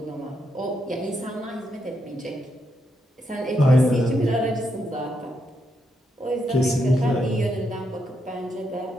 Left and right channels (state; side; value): normal; both; correlation 0.80